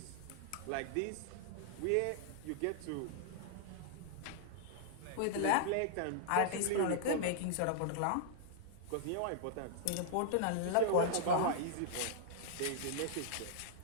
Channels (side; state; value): both; different; correlation -0.01